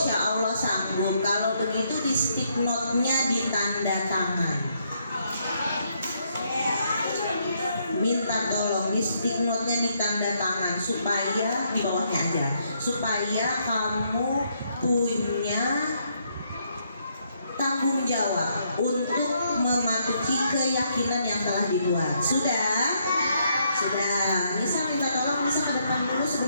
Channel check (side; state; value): both; inverted; correlation -0.73